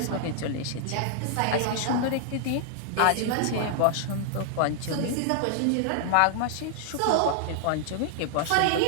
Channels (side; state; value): both; different; correlation -0.01